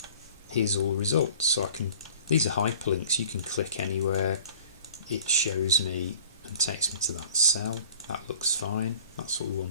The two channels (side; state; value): both; inverted; correlation -0.49